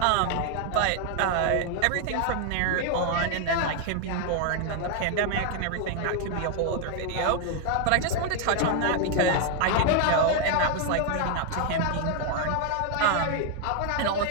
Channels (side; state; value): both; different; correlation 0.00